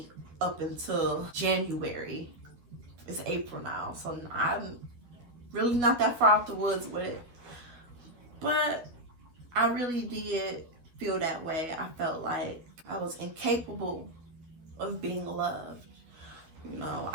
up until January. It's April now, so I'm really not that far off the woods with it. But I really did feel that way. I felt like I was incapable of being loved. You know,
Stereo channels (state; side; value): late; left; 12 ms